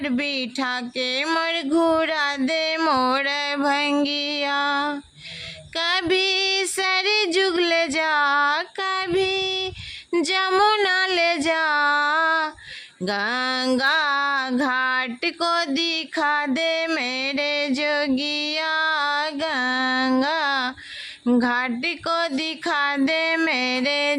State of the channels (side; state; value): both; identical; correlation 1.00